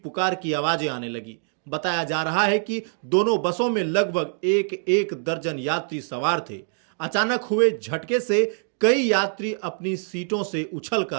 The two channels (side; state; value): left; silent; digital silence